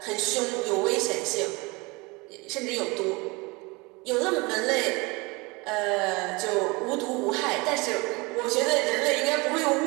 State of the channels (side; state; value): left; quieter; 26.1 dB